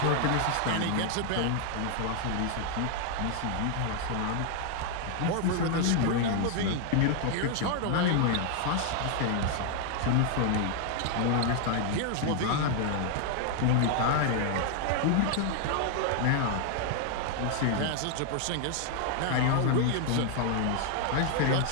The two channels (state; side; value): different; both; correlation 0.00